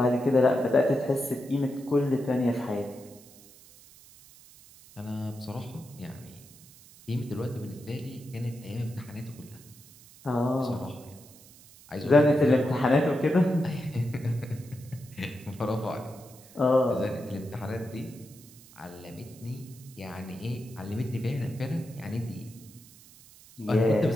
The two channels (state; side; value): noise; right; hiss, 22 dB below the sound